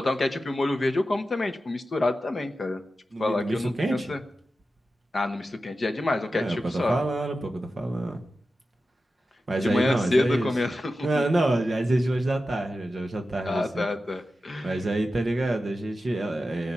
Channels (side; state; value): both; normal; correlation 0.92